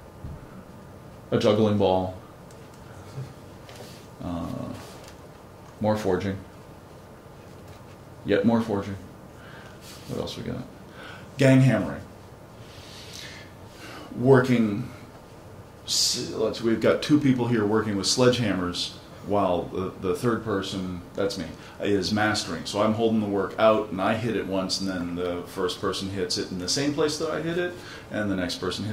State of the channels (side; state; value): both; identical; correlation 1.00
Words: A juggling ball. More forging. Yet more forging. What else we got? Gang hammering. We've got 2 people here working with sledgehammers while the third person, that's me, is mastering. So I'm holding the work out and I hit it once and then the first person hits it in the same place that I hit it and the next person